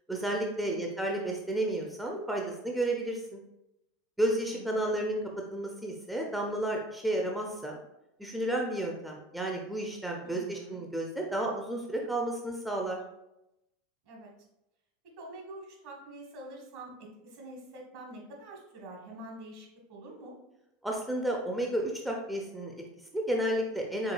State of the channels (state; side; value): normal; both; correlation 0.54